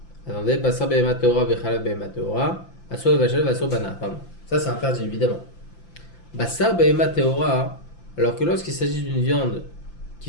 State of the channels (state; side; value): late; right; 5.8 ms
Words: attendez, Basar Behema Teora Bechalav Behema Teora, Asur Levashel Asur Ba'anaa, pardon, ça c'est interdit évidemment. Basar Behema Teora, alors que lorsqu'il s'agit d'une viande